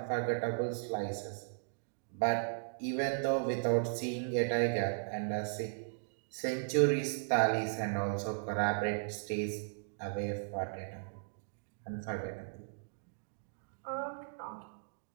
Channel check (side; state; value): left; silent; digital silence